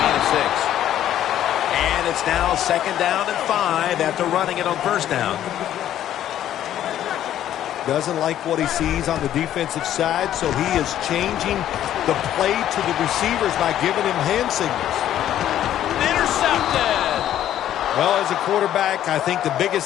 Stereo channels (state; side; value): quieter; right; 11.6 dB